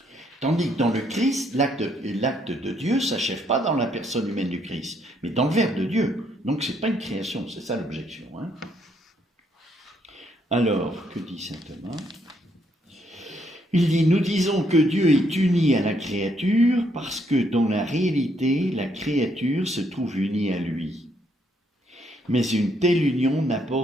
tandis que dans le Christ, l'acte de Dieu ne s'achève pas dans la personne humaine du Christ, mais dans le Verbe de Dieu. Donc ce n'est pas une création, c'est ça l'objection. Hein. Alors, que dit saint Thomas ? Il dit, nous disons que Dieu est uni à la créature parce que dans la réalité, la créature se trouve unie à lui. Mais une telle union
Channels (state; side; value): normal; both; correlation 0.72